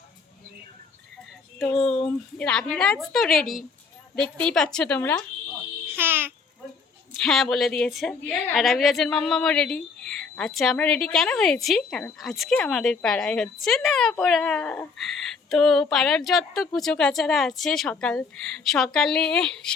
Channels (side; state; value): right; quieter; 5.0 dB